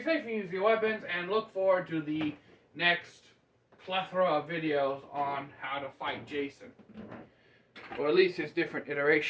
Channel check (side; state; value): both; identical; correlation 1.00